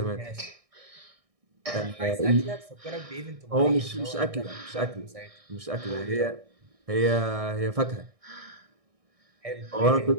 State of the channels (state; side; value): late; left; 1.6 ms